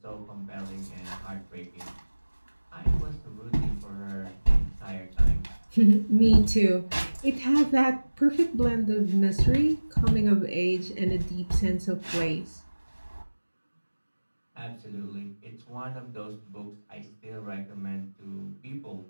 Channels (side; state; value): both; inverted; correlation -1.00